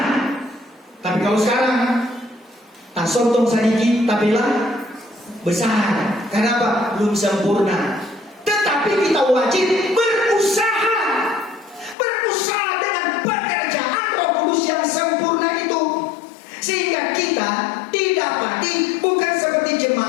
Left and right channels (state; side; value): drops out; right; at 12.0 s